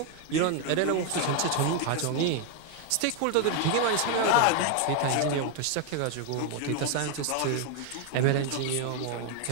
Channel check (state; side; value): different; both; correlation 0.01